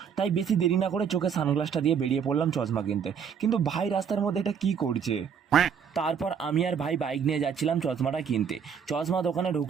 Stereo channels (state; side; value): quieter; left; 7.2 dB